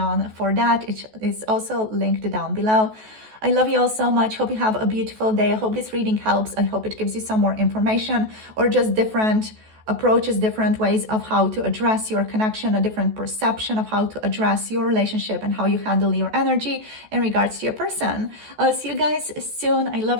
for that. It is also linked down below. I love you all so much. Hope you have a beautiful day. I hope this reading helps. I hope it gives you some more information or just different approaches, different ways of how to address your connection, a different perception of how to address your relationship and how you handle your energy in regards to your person. I'll see you guys soon. I love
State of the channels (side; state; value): left; late; 14 ms